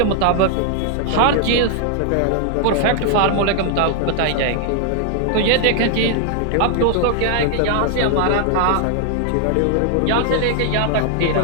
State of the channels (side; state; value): both; different; correlation 0.00